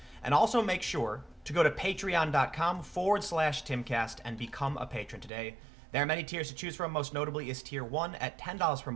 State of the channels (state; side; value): drops out; left; at 5.3 s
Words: And also make sure to go to patreon.com/Timcast and become a patron today. There are many tiers to choose from. Most notably is tier 1 at $10 per